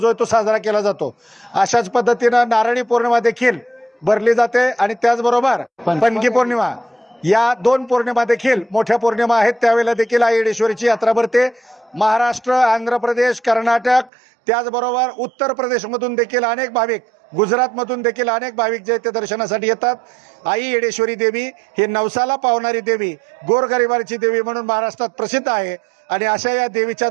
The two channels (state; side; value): drops out; left; at 14.1 s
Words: आहे तो साजरा केला जातो. अशाच पद्धतीनं नारळी पौर्णिमा देखील भरली जाते आणि त्याचबरोबर पणगी पौर्णिमा या 2 पौर्णिमा देखील मोठ्या पौर्णिमा आहेत. त्यावेळेला देखील आई येडेश्वरीची यात्रा भरते. महाराष्ट्र, आंध्र प्रदेश, कर्नाटक त्याचबरोबर उत्तर प्रदेशमधून देखील अनेक भाविक, गुजरातमधून देखील अनेक भाविक जे ते दर्शनासाठी येतात. आई येडेश्वरी देवी ही नवसाला पावणारी देवी, गोरगरिबाची देवी म्हणून महाराष्ट्रात प्रसिद्ध आहे आणि अशा या देवीच्या